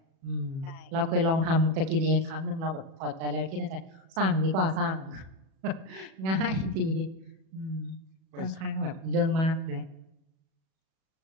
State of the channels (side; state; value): left; late; 37 ms